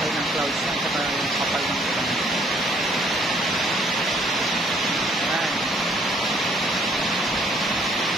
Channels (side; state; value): both; normal; correlation 0.64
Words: ng clouds at saka yung kapal ng ulan. Ayan.